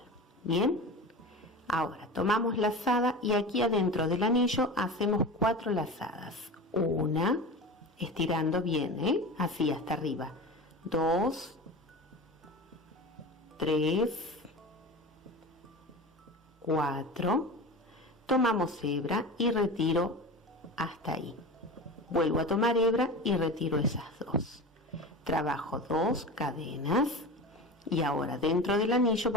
Bien, ahora tomamos lazada y aquí adentro del anillo hacemos 4 lazadas. Una, estirando bien, así hasta arriba. 2, 3, 4, tomamos hebra y retiro hasta ahí. Vuelvo a tomar hebra y retiro esas 2. Trabajo 2 cadenas y ahora dentro del anillo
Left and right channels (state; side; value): normal; both; correlation 0.30